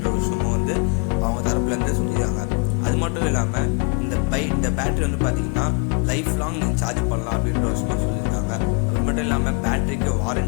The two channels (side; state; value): right; quieter; 36.0 dB